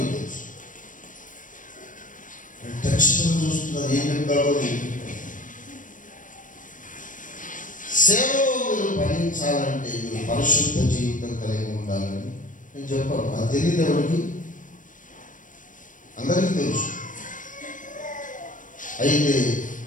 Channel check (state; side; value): late; right; 0.38 ms